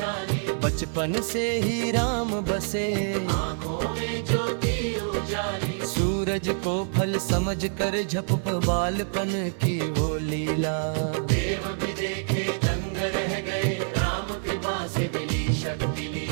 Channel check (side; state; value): left; silent; 60 dB below the other